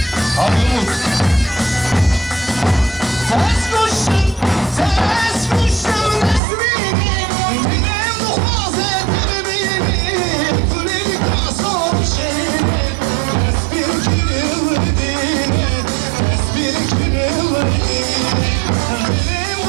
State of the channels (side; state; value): left; drops out; at 6.4 s